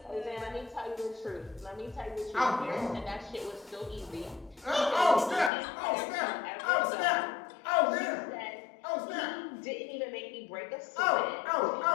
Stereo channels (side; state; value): right; drops out; at 5.5 s